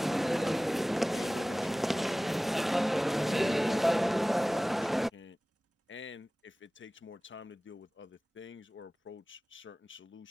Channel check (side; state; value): both; normal; correlation 0.98